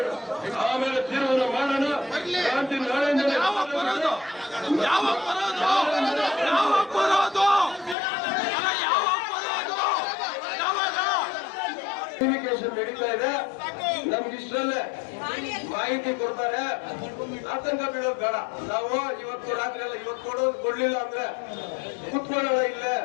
ಆಮೇಲೆ ತೀರ್ಮಾನ ಮಾಡೋಣ. ಕ್ರಾಂತಿ ನಾಳೆಯಿಂದಲೇ ಕಮ್ಯುನಿಕೇಶನ್ ನಡೀತಾ ಇದೆ. ನಮ್ಗೆ ಇಷ್ಟರಲ್ಲೇ ಮಾಹಿತಿ ಕೊಡ್ತಾರೆ, ಆತಂಕ ಬೀಳೋದು ಬೇಡ. ನಾವು ಇವತ್ತು ರಾತ್ರಿ ಎಲ್ಲ ಇವತ್ತು ಕೊಡ್ಲಿಲ್ಲ ಅಂದ್ರೆ ಕುತ್ಕೊಳ್ಳೋಣ ಇಲ್ಲೇ,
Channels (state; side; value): drops out; right; at 8.0 s